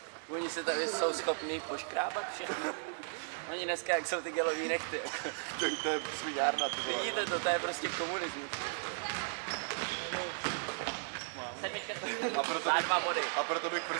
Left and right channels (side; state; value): left; silent; digital silence